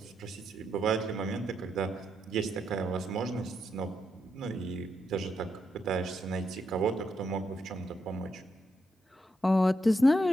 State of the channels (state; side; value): normal; both; correlation 0.81